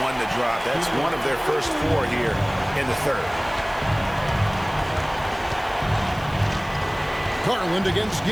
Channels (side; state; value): right; noise; hiss, 24 dB below the sound